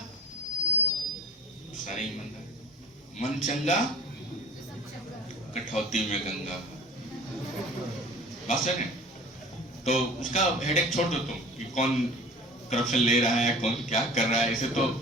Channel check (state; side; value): normal; both; correlation 0.42